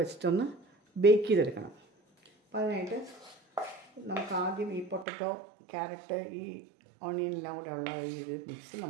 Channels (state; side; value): drops out; left; at 5.1 s